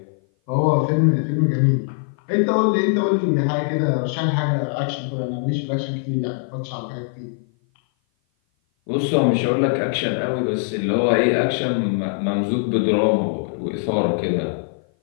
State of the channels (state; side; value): silent; right; 56 dB below the other